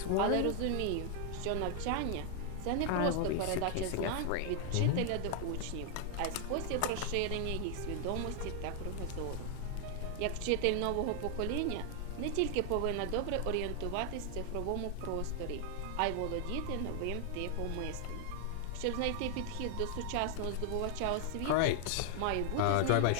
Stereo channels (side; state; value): both; different; correlation 0.00